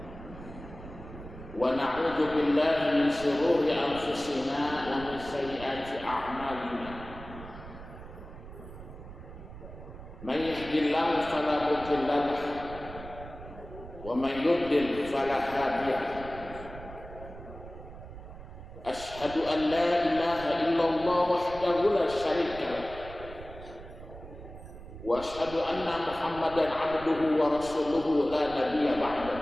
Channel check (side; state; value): right; noise; rumble, 14 dB below the sound